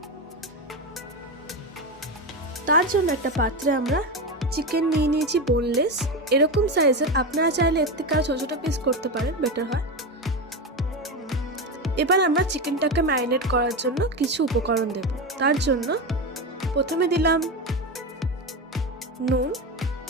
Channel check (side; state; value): both; normal; correlation 0.17